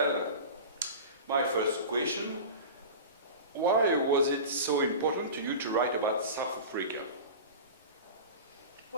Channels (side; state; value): both; inverted; correlation -0.32